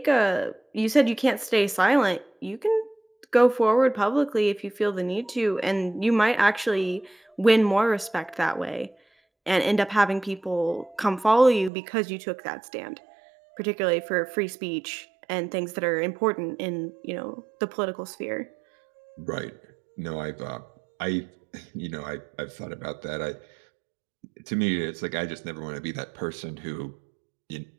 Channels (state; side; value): drops out; left; at 11.7 s